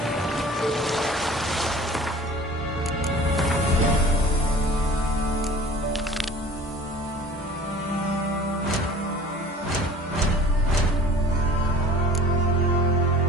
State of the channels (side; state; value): both; normal; correlation 0.45